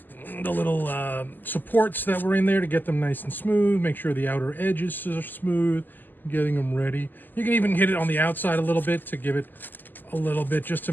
supports that were in there, to get them nice and smooth, make sure the outer edges are smooth, getting them ready. You can even hit it on the outside a little bit to give it a little bit, just to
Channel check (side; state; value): right; late; 0.088 ms